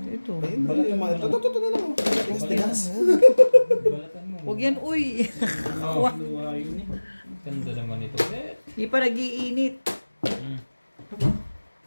Ito. Ayun, balat naman. Ito na lang. Tigas. Balatan mo. Huwag yan, uy. Luwa yun eh. Ganda naman ito. Eh. Di pa nag-iinit.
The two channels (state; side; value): inverted; both; correlation -1.00